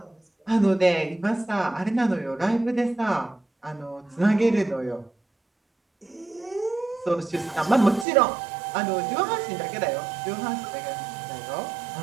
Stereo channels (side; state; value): left; drops out; at 8.1 s